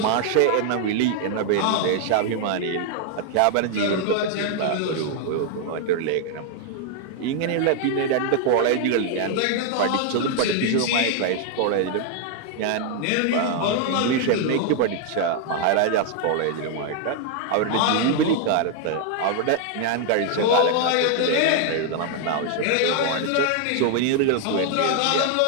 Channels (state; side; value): different; both; correlation 0.00